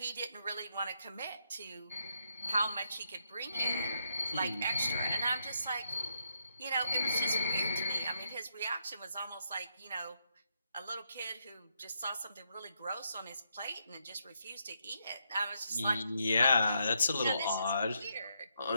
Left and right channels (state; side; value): inverted; both; correlation -0.79